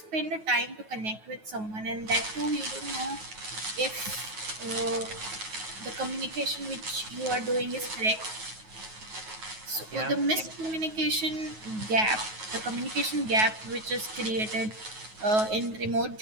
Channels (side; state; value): left; late; 9.3 ms